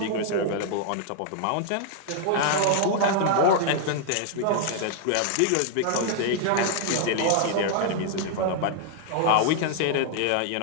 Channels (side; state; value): both; different; correlation -0.01